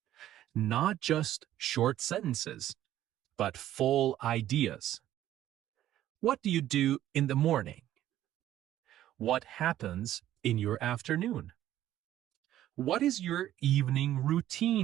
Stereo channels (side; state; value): left; quieter; 12.8 dB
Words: Not just short sentences, but full ideas. What do you do in the morning? What happens in your afternoon? What is your evening